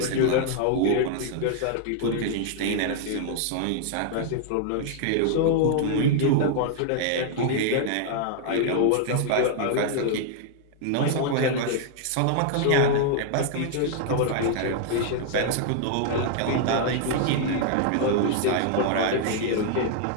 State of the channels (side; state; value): both; different; correlation 0.00